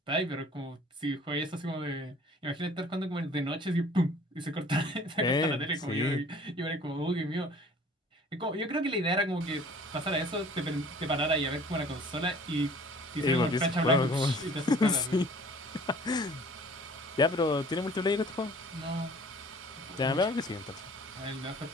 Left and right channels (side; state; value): both; normal; correlation 0.50